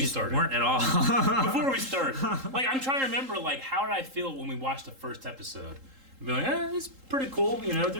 just started. weren't at all. before we start, like I'm trying to remember, like how did I feel when we watched the first episode? I'd be like, it's pretty cool. You know,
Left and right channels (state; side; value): late; left; 3.8 ms